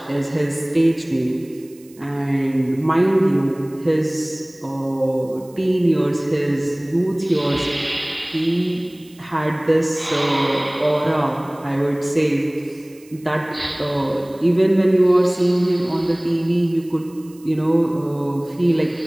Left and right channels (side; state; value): right; noise; hiss, 27 dB below the sound